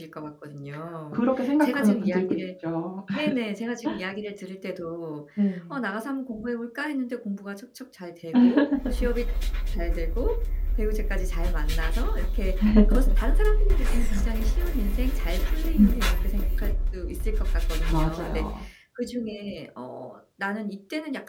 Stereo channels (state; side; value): identical; both; correlation 1.00